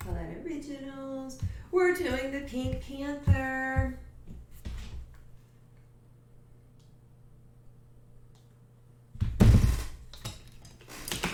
Originals. We're doing the Pink Panther.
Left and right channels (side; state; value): both; identical; correlation 1.00